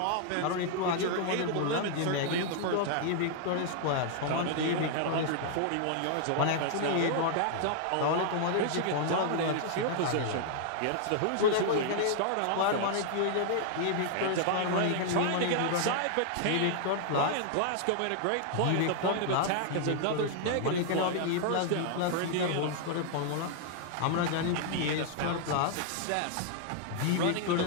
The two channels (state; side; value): different; both; correlation 0.00